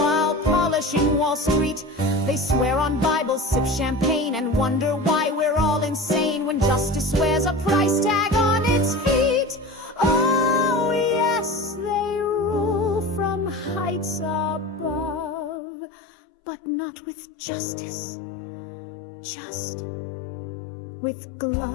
polishing Wall Street. They swear on Bibles, sip champagne, and wonder why we're all insane when justice wears a price tag on its feet. Oh yes, they rule from heights above, but not with justice, just with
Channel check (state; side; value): drops out; right; at 15.6 s